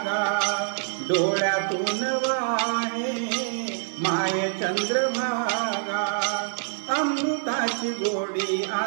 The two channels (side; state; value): left; silent; digital silence